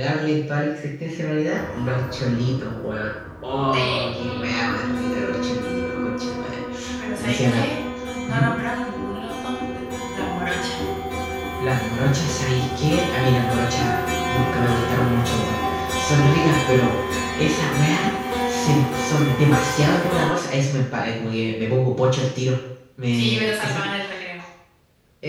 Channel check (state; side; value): identical; both; correlation 1.00